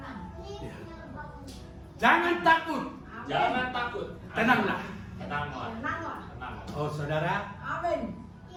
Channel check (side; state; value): both; identical; correlation 1.00